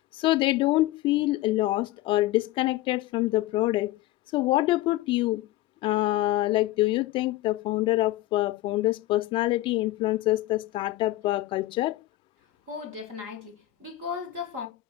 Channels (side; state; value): right; quieter; 16.4 dB